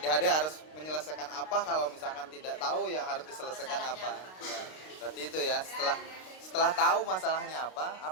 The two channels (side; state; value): right; late; 32 ms